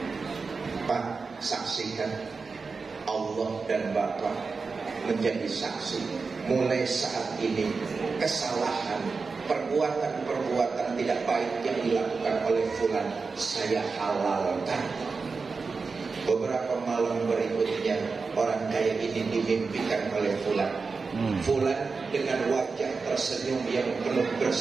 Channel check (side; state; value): left; quieter; 4.6 dB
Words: Pak, saksikan, Allah dan Bapak menjadi saksi. Mulai saat ini kesalahan, perbuatan-perbuatan tidak baik yang dilakukan oleh fulan saya halalkan. Beberapa malam berikutnya orang kaya ini dimimpikan oleh fulan. Fulan dengan wajah tersenyum yang penuh